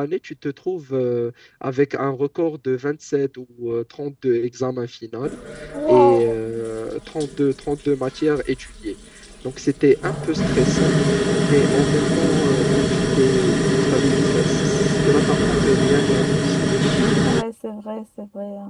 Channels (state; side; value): identical; both; correlation 1.00